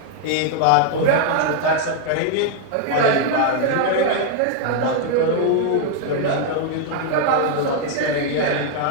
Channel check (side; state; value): both; different; correlation 0.00